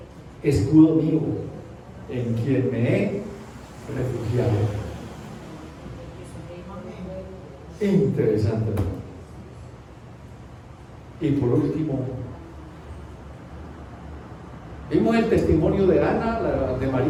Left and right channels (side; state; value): both; identical; correlation 1.00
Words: escudo mío, en quien me he refugiado. Interesante, ¿no? Y por último, vimos el testimonio de Ana, de